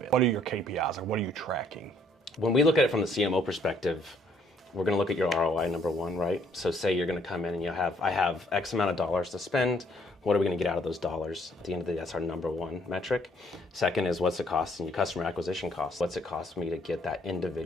What are your KPIs, or what are you tracking? When we look at it from the CMO perspective, we're going to look at your ROI, number one, right? So say you're going to come in and I have X amount of dollars to spend. What are we going to get out of those dollars? At the end of the day, that's our number one metric. Second is what's it cost in your customer acquisition cost? What's it cost me to get that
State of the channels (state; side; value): normal; both; correlation 0.65